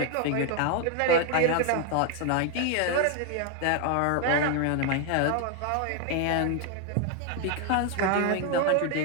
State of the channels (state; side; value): different; both; correlation 0.01